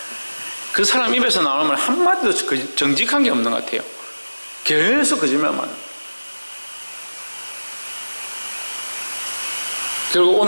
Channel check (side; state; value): both; inverted; correlation -1.00